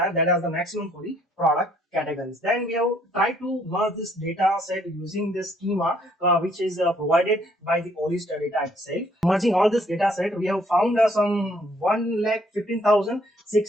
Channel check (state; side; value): normal; both; correlation 0.65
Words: that is the maximum for the product categories. Then we have tried to merge this data set using the schema which is provided by the Olist data itself. Merging all this data set, we have found some